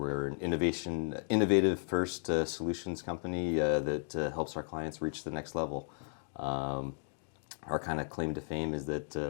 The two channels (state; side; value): silent; right; 55 dB below the other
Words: an innovative first solutions company that helps our clients reach the next level. Our kind of claim to fame is that